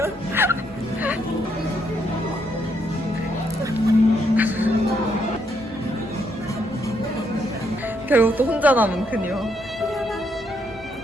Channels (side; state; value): both; normal; correlation 0.75